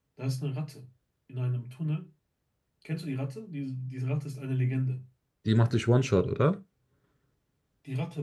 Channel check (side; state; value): both; identical; correlation 1.00